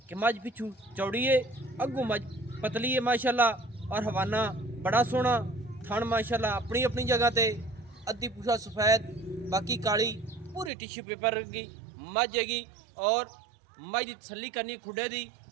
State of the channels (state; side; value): drops out; left; at 10.7 s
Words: कि मज पिछू चौड़ी है, अग्गू मज पतली है माशाअल्लाह। और हवाना बड़ा सोहना, थन माशाअल्लाह अपनी अपनी जगह ते। अद्धी पूछा सफेद, बाकी काली, पूरी टिश्यू पेपर की मज हैगी। और मज की तसली करनी खुडे दी,